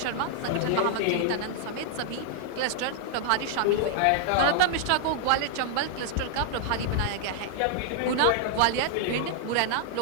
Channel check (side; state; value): both; different; correlation -0.01